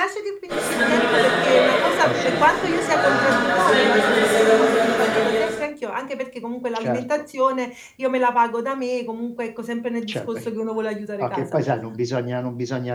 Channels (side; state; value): both; identical; correlation 1.00